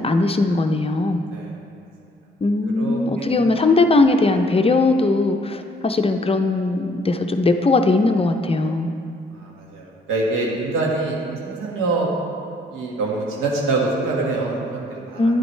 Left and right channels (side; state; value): both; normal; correlation 0.64